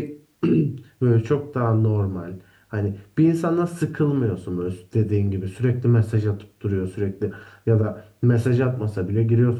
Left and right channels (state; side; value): identical; both; correlation 1.00